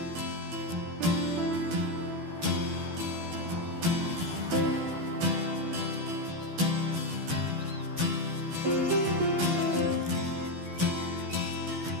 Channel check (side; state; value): left; late; 12 ms